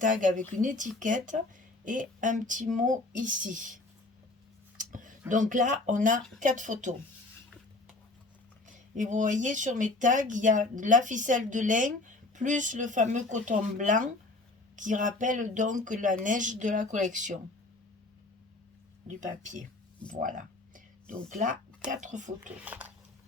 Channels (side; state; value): right; quieter; 3.0 dB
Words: avec une étiquette et un petit mot ici. Donc là, on a 4 photos. Et vous voyez, sur mes tags, il y a la ficelle de laine plus le fameux coton blanc qui rappelle donc la neige de la collection du papier. Voilà. Donc là, 4 photos.